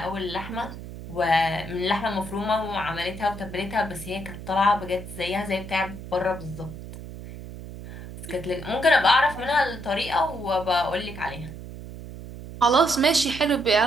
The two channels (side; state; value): right; noise; hum, 12 dB below the sound